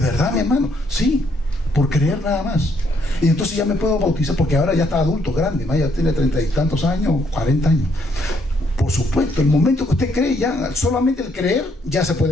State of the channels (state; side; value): normal; both; correlation 0.71